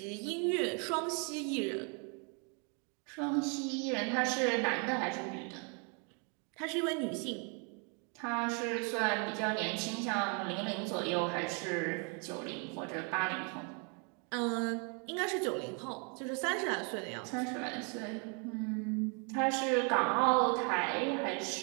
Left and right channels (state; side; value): quieter; left; 36.7 dB